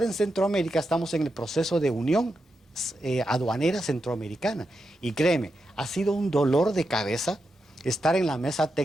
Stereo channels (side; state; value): both; normal; correlation 0.87